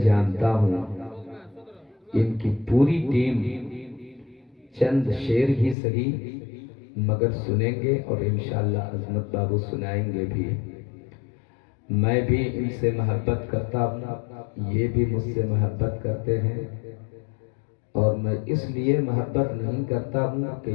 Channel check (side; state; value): right; drops out; at 5.8 s